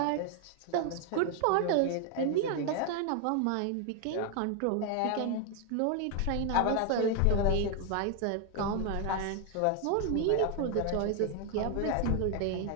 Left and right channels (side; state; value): both; different; correlation 0.01